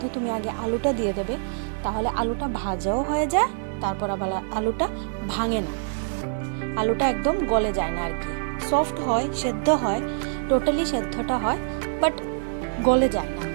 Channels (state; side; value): silent; left; digital silence